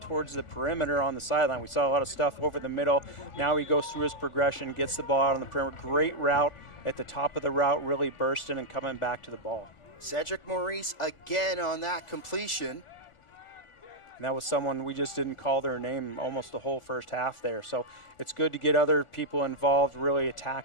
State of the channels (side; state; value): right; late; 1.4 ms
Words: towards the perimeter on the sideline. We saw a lot of stuff over the middle. Now he goes through his progression, gets the ball out on the perimeter. Great route at the top of the route, really bursting and coming back to the ball. Cedric Maurice again on that completion. And that was someone we just didn't call their name almost the whole first half there. So it's good to get other people involved, really